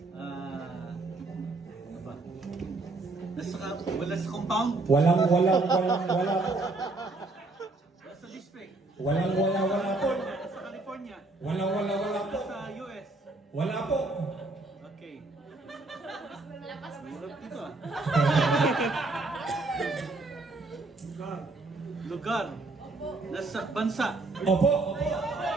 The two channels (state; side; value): quieter; left; 3.2 dB